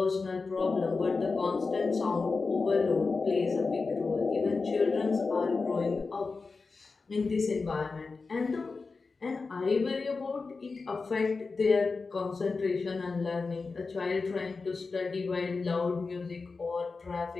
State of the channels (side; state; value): right; quieter; 4.2 dB